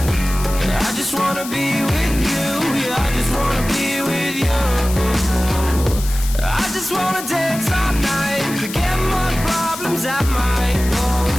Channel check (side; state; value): left; noise; hiss, 11 dB below the sound